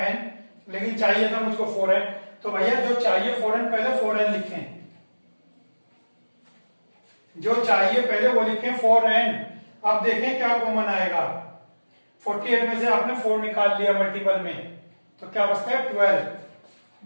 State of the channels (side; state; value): both; inverted; correlation -1.00